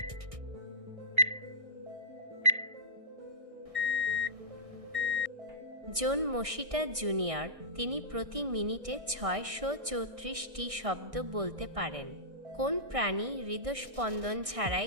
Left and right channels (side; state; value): left; late; 1.6 ms